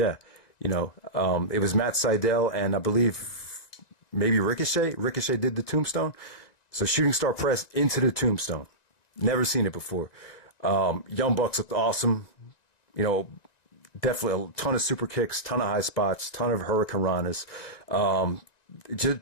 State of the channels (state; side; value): late; right; 1.9 ms